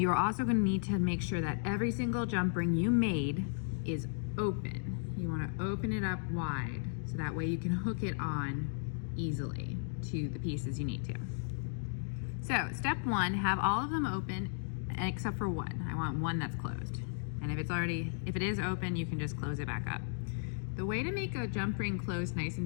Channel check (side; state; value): right; silent; digital silence